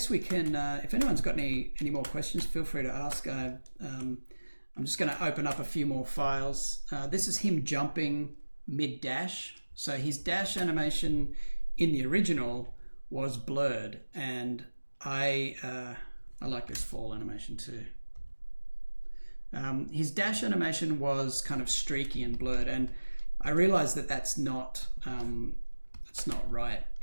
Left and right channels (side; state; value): both; inverted; correlation -1.00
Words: we can, if anyone's got any more questions, feel free to ask. I'm just going to open up a few more files. This is him jumping mid-dash. So his dash animation in the original was blurred, and I like this fall animation too. His dash animation was kind of streaky and blurred, and I realized that that's not right.